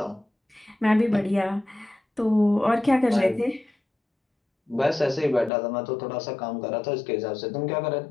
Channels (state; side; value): drops out; right; at 5.5 s